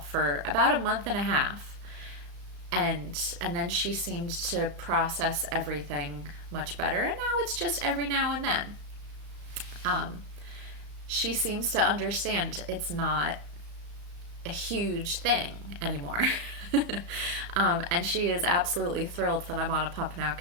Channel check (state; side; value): late; left; 34 ms